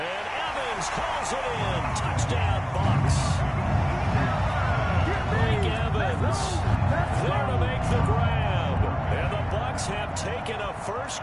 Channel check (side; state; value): both; identical; correlation 1.00